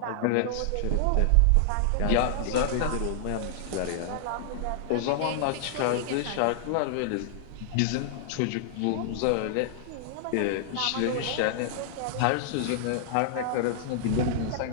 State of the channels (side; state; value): both; different; correlation -0.01